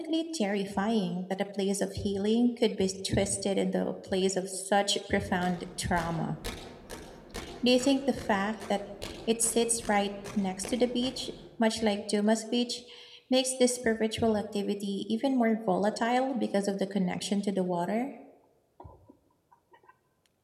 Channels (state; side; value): identical; both; correlation 1.00